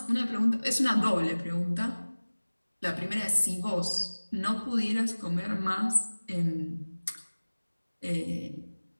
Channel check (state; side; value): inverted; both; correlation -1.00